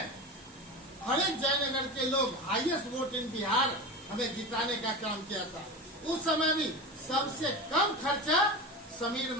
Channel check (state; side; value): normal; both; correlation 0.26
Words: हर एक जयनगर के लोग हाईएस्ट वोट इन बिहार हमें जिताने का काम किया था। उस समय भी सबसे कम खर्चा समीर